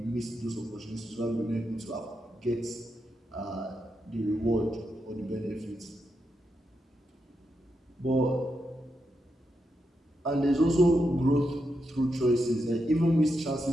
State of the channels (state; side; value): normal; both; correlation 0.85